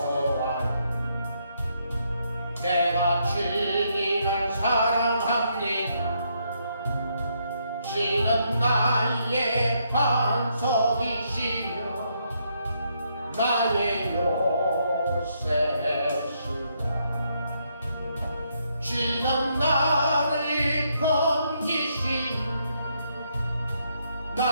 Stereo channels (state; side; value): inverted; both; correlation -0.75